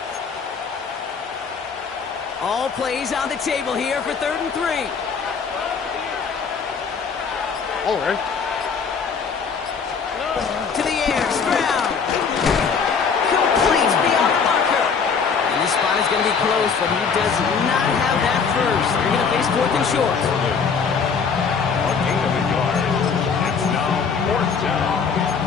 All plays on the table here for 3rd and 3. All right. To the air, Stroud. Complete beyond the marker. And this spot is going to be close, but he does not have that first. They're going to face 4th and short. It's now 4th down.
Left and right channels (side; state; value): right; quieter; 5.9 dB